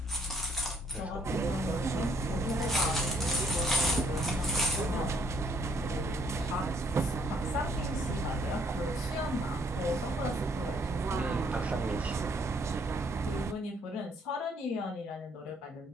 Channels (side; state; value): both; normal; correlation 0.65